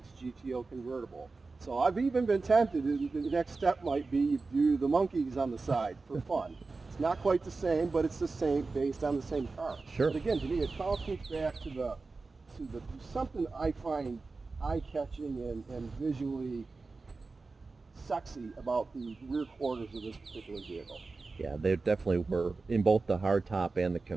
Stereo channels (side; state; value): left; quieter; 3.9 dB